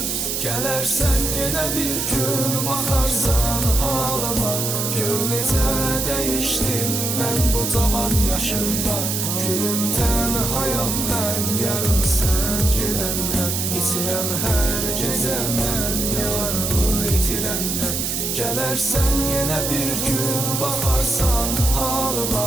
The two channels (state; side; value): noise; right; hiss, 1 dB below the sound